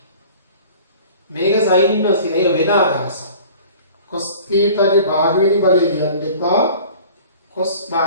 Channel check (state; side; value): inverted; both; correlation -0.45